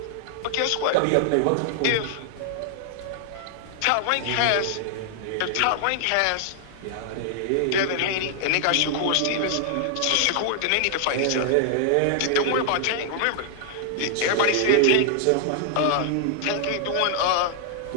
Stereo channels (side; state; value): both; different; correlation 0.00